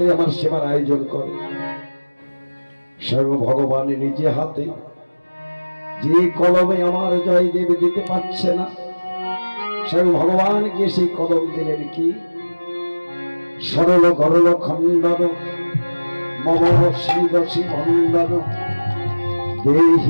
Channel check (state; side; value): inverted; both; correlation -1.00